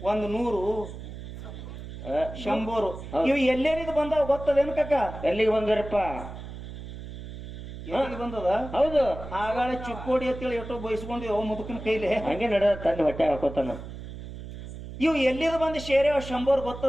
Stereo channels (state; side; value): noise; right; hum, 11 dB below the sound